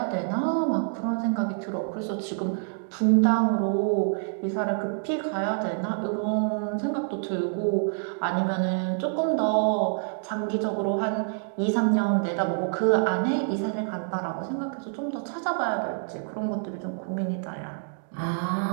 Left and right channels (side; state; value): left; silent; digital silence